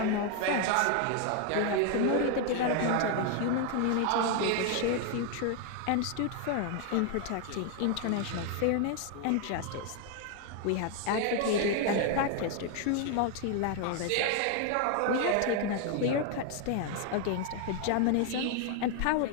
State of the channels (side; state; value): both; different; correlation 0.01